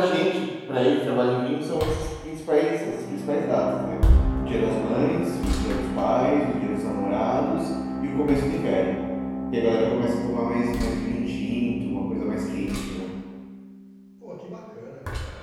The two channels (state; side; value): identical; both; correlation 1.00